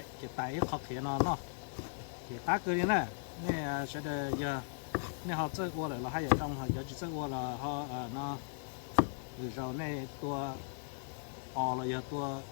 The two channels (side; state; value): right; silent; digital silence